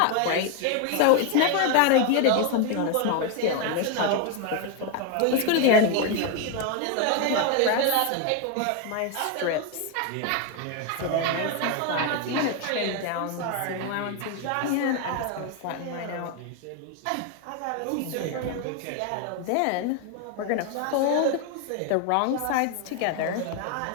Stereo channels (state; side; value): different; both; correlation 0.01